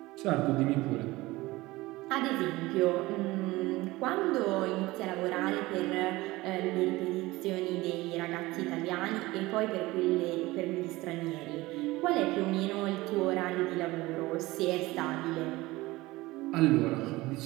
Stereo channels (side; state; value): left; quieter; 19.8 dB